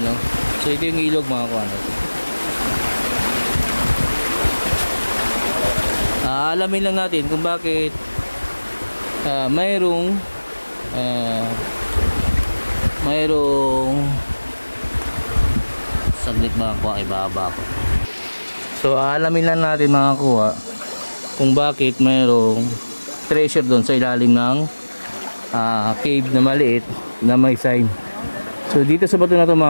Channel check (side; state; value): both; inverted; correlation -1.00